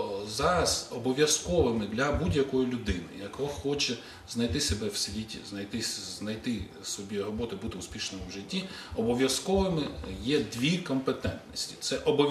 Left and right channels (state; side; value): identical; both; correlation 1.00